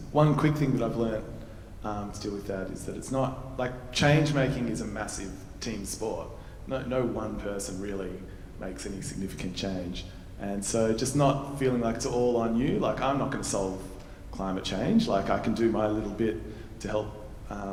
one quick thing that I've learnt to deal with that is that it's not, like, change making is a massive team sport. No one person really makes any significant change. And so just not feeling like it's all on you, like I'm not going to solve climate change, like I can do my little bit to help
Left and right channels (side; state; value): both; identical; correlation 1.00